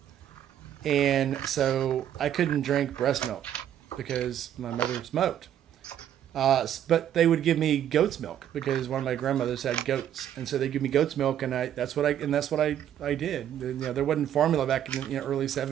And so I couldn't drink breast milk because my mother smoked. But they would give me goat's milk because one of my grandmothers had goats, and so they give me goat's milk, and that's what I did. You know, there wasn't formula back in the early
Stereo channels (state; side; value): quieter; left; 10.5 dB